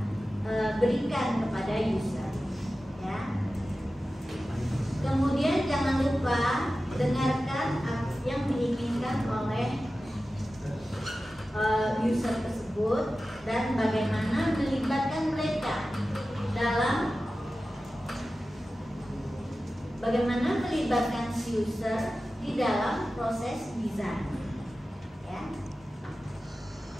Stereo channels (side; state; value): both; normal; correlation 0.94